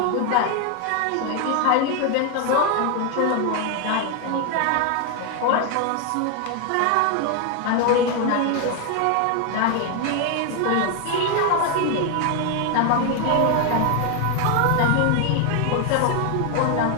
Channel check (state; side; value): different; both; correlation 0.01